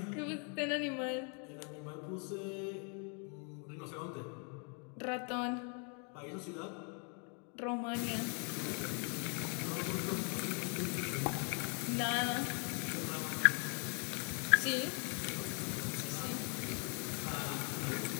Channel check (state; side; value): quieter; right; 38.7 dB